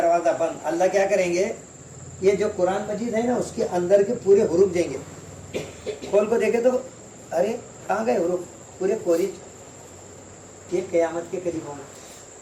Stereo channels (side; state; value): both; identical; correlation 1.00